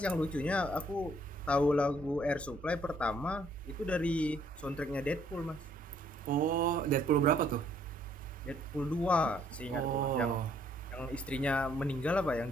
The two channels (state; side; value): normal; both; correlation 0.65